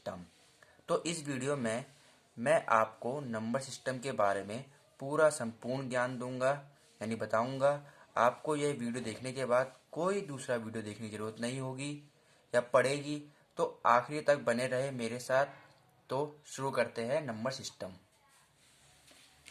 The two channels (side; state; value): both; identical; correlation 1.00